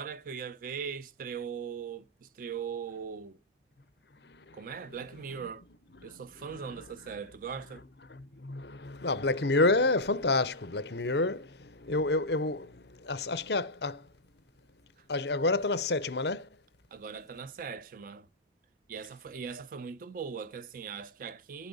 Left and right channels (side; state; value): both; normal; correlation -0.10